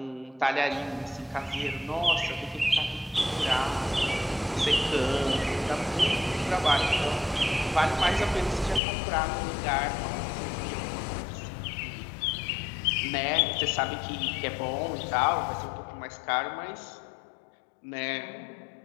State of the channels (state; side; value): drops out; right; at 8.8 s